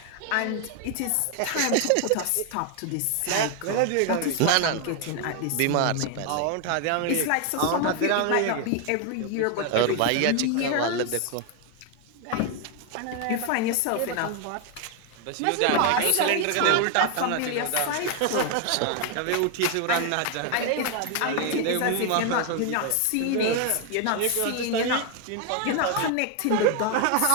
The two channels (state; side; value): different; both; correlation 0.01